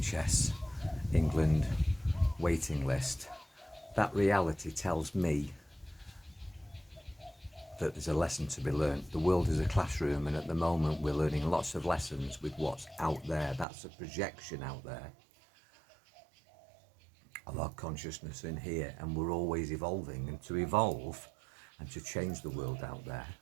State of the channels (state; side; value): drops out; left; at 13.7 s